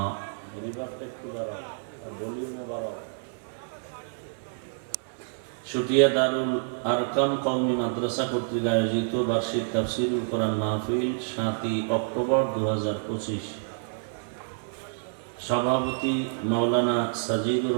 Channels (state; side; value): silent; left; 59 dB below the other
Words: শুটিয়া দারুল আরকাম কওমি মাদ্রাসা কর্তৃক আয়োজিত বার্ষিক তাফসীরুল কোরআন মাহফিল 7ই অক্টোবর 2025। সভাপতি মাওলানা সাজিদুর